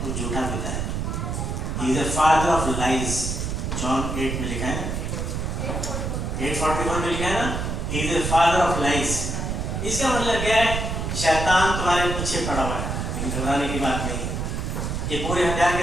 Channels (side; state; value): right; noise; rumble, 2 dB below the sound